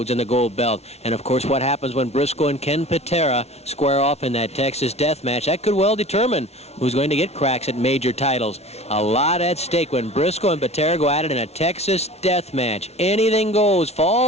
in the gold belt. And, of course, what happens when Briscoe and Ken Patera square off in that Texas death match, that could well determine who's going to get cracks at major titles. A lot at stake when Briscoe and Patera go at it in a Texas death match. Anything goes.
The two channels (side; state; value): right; late; 0.31 ms